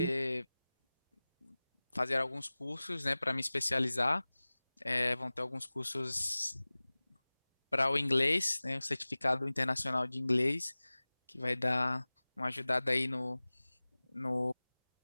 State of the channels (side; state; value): both; inverted; correlation -0.99